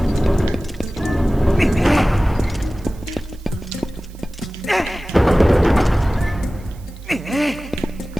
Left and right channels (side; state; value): right; noise; hiss, 27 dB below the sound